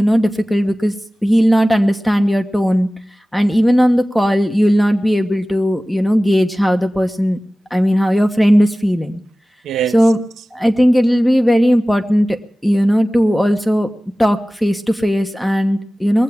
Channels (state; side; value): normal; both; correlation 0.97